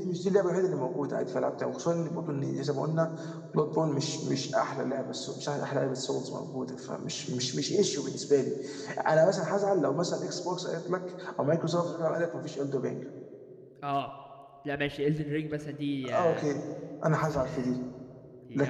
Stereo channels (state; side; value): identical; both; correlation 1.00